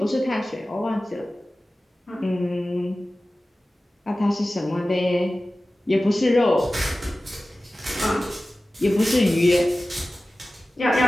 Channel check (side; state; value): both; normal; correlation 0.96